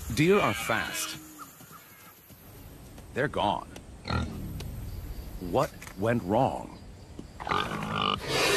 Deer are fast. They're gone. What went wrong?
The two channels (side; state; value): both; identical; correlation 1.00